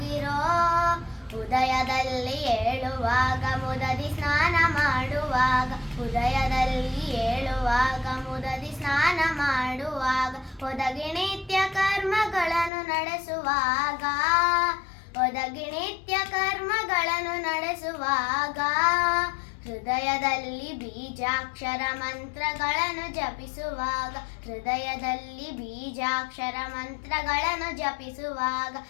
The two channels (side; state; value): right; drops out; at 12.7 s